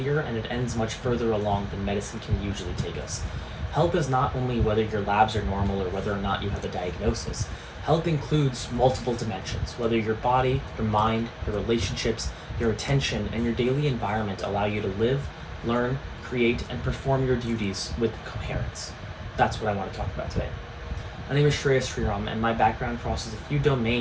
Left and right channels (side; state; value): both; identical; correlation 1.00